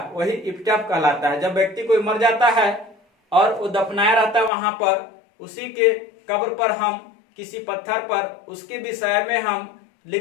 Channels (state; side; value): drops out; right; at 4.5 s